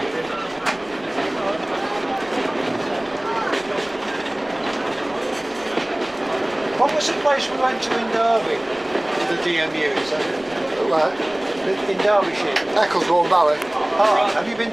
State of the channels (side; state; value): right; noise; rumble, 27 dB below the sound